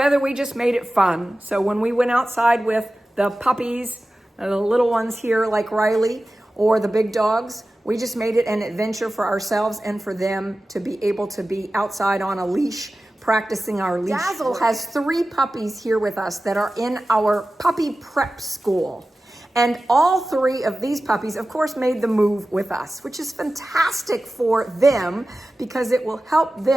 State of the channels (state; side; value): normal; both; correlation 0.95